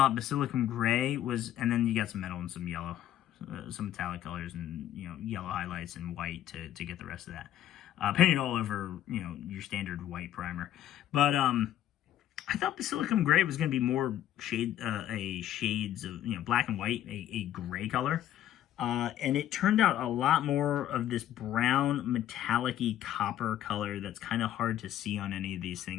Basilicum Gray was, and then you got some metal and some yellow, some metallic colors and, you know, yellow highlights and white to get the rest of that. Painted all over, you know, your standard white primer. But I thought Basilicum Gray was going to be more shades of, you know, black and white, a gray color. And it turned out a lot more of this brown metallic-y copper color that's kind of hard to see on any of these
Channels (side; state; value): right; quieter; 12.0 dB